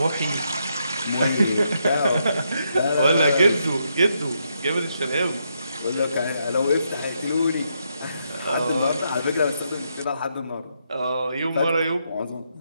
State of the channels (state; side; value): inverted; both; correlation -0.79